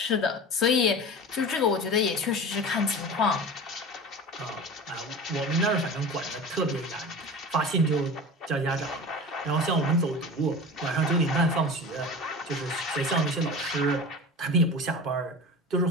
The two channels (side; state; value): both; normal; correlation 0.33